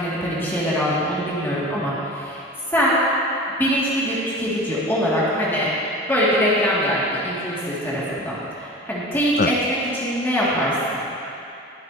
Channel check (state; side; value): normal; both; correlation 0.36